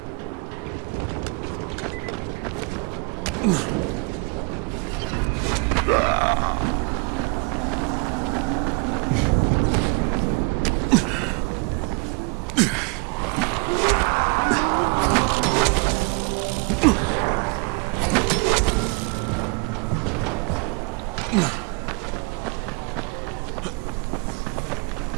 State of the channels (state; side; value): quieter; left; 31.3 dB